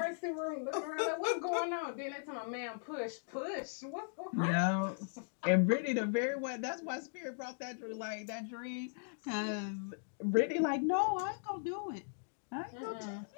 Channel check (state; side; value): silent; right; digital silence